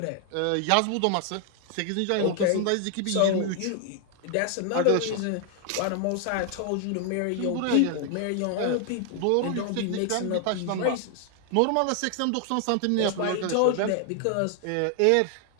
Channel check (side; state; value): both; different; correlation 0.00